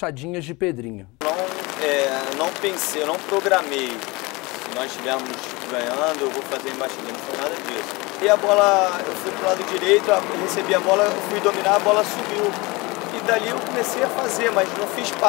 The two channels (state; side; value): quieter; right; 24.3 dB